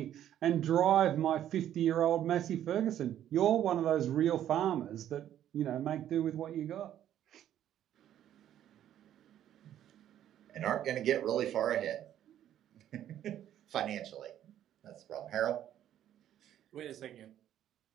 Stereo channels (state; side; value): quieter; left; 11.2 dB